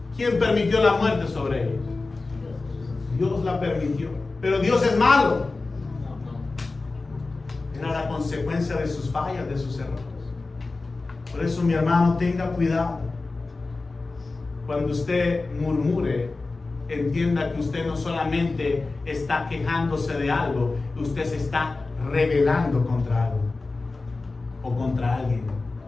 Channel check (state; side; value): quieter; right; 3.6 dB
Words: ¿Quién permitió la muerte sobre ellos? Dios la permitió. Pero Dios es malo. Era la consecuencia de sus fallas, de sus errores. Por eso, mi hermano, tenga cuidado. Cuando usted murmure, entienda que usted no solamente está quejándose de algo, usted se está rebelando contra algo o contra alguien.